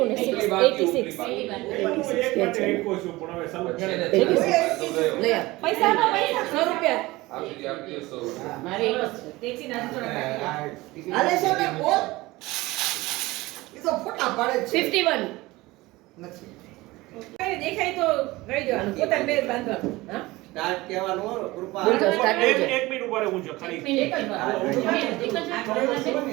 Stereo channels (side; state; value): left; quieter; 20.1 dB